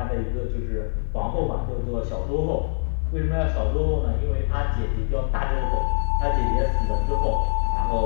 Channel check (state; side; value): silent; right; digital silence